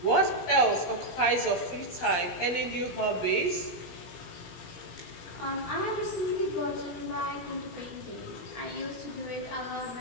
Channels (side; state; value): right; late; 17 ms